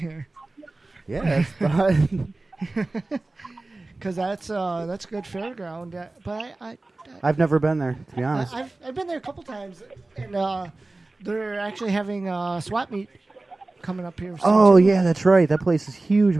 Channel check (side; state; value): left; quieter; 3.1 dB